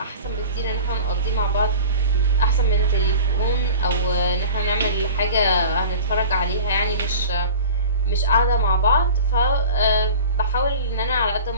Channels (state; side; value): inverted; both; correlation -0.38